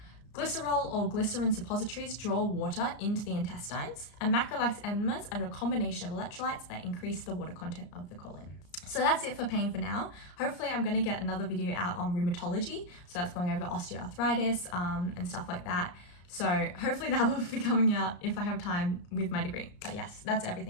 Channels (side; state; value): right; late; 34 ms